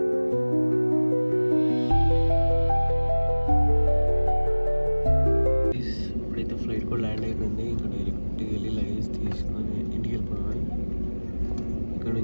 Land అయిపోయింది. ఇంకా direct వెళ్ళి luggage తీసుకొని ఇంటికి వెళ్ళిపోయాను. ఇక్కడ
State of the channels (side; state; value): both; inverted; correlation -1.00